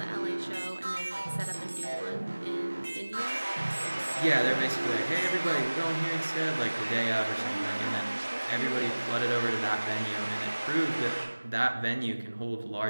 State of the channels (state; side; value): inverted; both; correlation -1.00